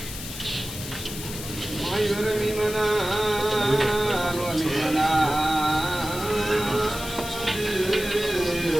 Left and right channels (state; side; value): noise; left; hiss, 10 dB below the sound